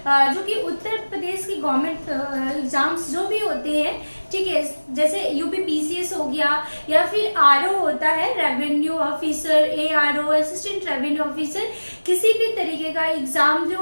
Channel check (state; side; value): inverted; both; correlation -1.00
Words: जो कि उत्तर प्रदेश की गवर्नमेंट एग्जाम्स जो भी होते हैं, ठीक है, जैसे यूपी पीसीएस हो गया या फिर आरओ होता है, revenue officer, ARO, assistant revenue officer, किसी भी तरीके का एग्जाम जो